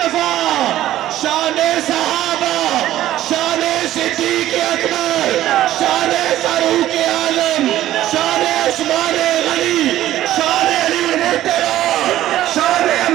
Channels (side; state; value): left; quieter; 13.7 dB